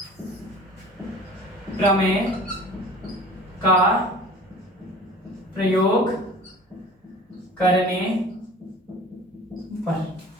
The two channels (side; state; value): both; normal; correlation 0.43